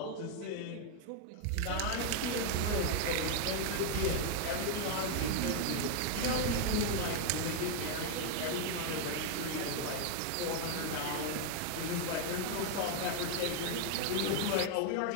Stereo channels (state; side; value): different; both; correlation 0.01